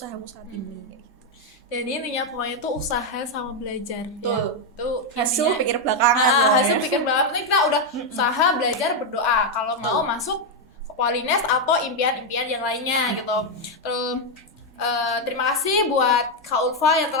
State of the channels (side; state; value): both; normal; correlation 0.02